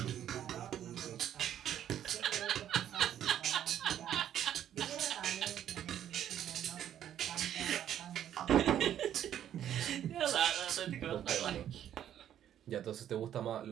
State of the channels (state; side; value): quieter; left; 10.6 dB